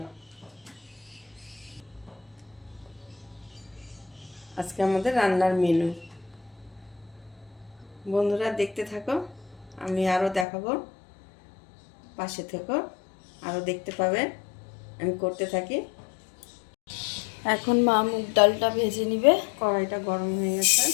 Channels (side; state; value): right; drops out; at 10.5 s